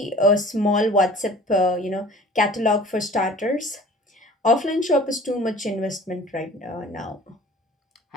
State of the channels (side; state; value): both; normal; correlation 0.45